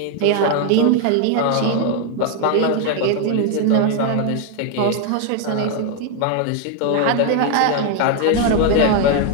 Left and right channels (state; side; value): different; both; correlation 0.01